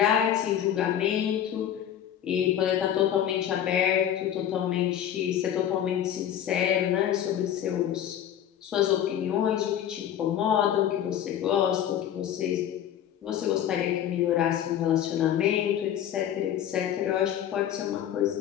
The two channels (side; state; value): right; quieter; 10.3 dB